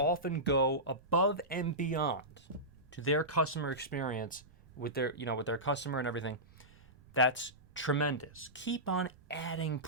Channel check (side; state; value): right; noise; rumble, 27 dB below the sound